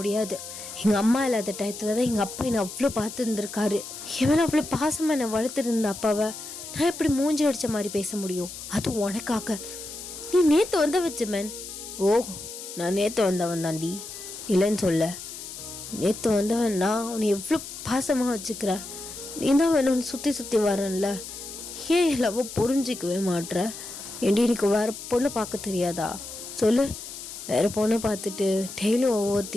எங்கள் அம்மா இல்லாத டயத்தில் தான் எங்கள் அப்பா என்னை அவ்வளோ பார்த்து இருந்திருக்காரு. எவன் அவ்வளோ பாசமாக என்னை வளர்த்துருந்த அப்பாவை நான் எப்படி மூஞ்சி அடித்த மாதிரி பேச முடியும்? அதுவும் உனக்காக. நீ நேற்று வந்தவன் ஜெமன். ஓ, நான் நேற்று வந்தவன் தாண்டி, இல்லைன்னு சொல்ல. நேற்று வந்தவன் நான் உன்னை எவ்வளோ பாசமாக வச்சுக்கிறேன். நீ தான் வேணும்னு சுற்றி சுற்றி வரேன்ல, ஏன் எல்லாவோ புரிஞ்சிக்கவே மாட்ற? ஏண்டி எனக்கு வேறு பொண்ணு பார்க்க தெரியாதா? சொல்லு. வேறு பொண்ணை பார்த்துட்டு டெய்லியும்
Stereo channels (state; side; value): noise; left; hiss, 11 dB below the sound